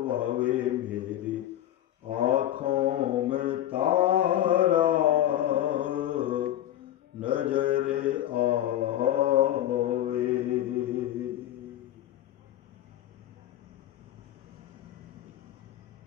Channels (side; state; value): right; quieter; 12.6 dB